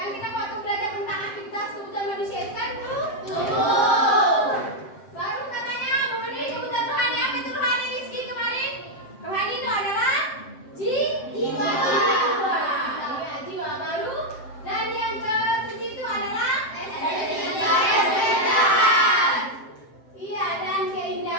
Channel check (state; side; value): late; right; 7.6 ms